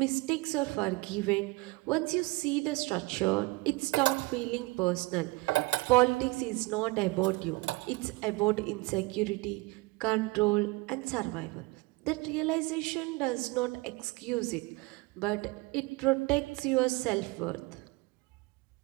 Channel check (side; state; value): left; quieter; 23.0 dB